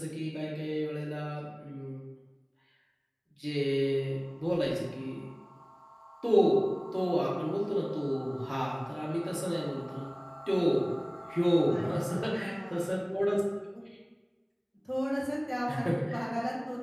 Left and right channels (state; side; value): identical; both; correlation 1.00